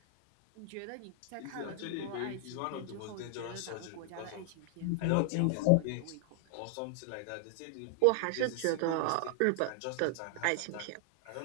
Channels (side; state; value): both; different; correlation 0.00